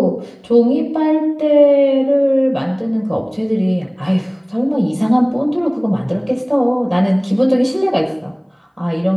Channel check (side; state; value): both; identical; correlation 1.00